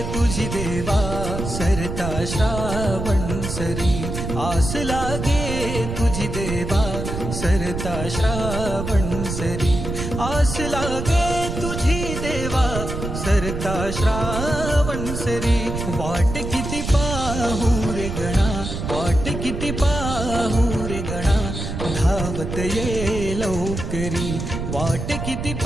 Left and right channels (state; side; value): noise; right; rumble, 5 dB below the sound